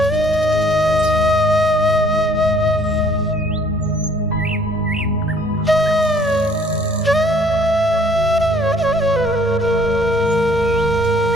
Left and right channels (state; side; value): normal; both; correlation 0.59